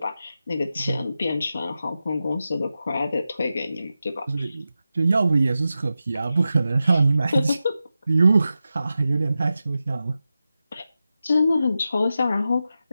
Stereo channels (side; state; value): both; inverted; correlation -0.92